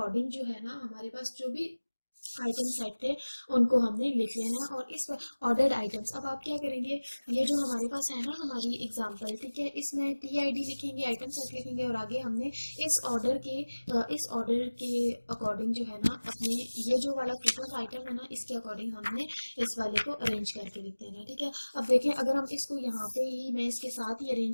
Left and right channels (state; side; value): inverted; both; correlation -1.00